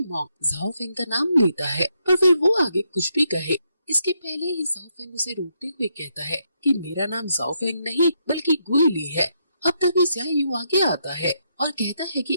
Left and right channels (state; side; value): inverted; both; correlation -0.78